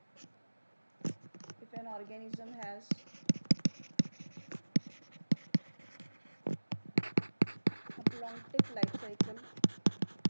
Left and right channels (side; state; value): both; inverted; correlation -1.00